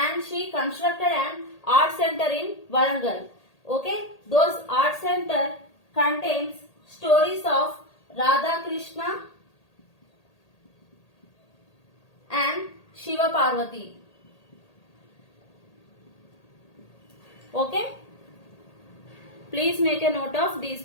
she constructed an art center in Warangal. Okay, those art center contains stories of Radha Krishna and Shiva Parvati. Okay, please make a note of these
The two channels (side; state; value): right; late; 1.8 ms